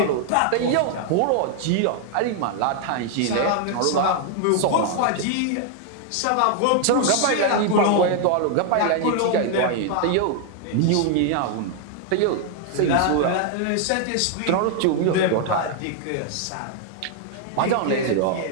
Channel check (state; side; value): different; both; correlation 0.00